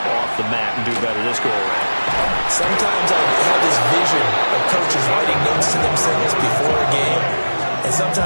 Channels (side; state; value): both; inverted; correlation -1.00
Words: off the mat and do better this go-around. Sometimes I have this vision of coaches writing notes to themselves before a game, and